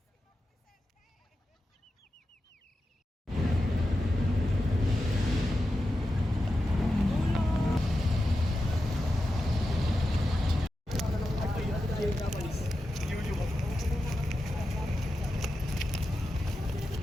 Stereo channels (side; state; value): both; normal; correlation 0.90